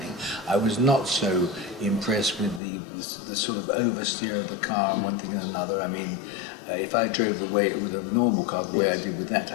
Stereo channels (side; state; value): right; drops out; at 2.6 s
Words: I was not so impressed with the sort of oversteer of the car and one thing and another. I mean, if I drove the way with a normal car the way I did with that,